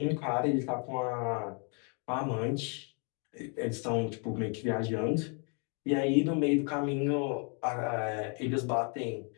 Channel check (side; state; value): right; quieter; 37.6 dB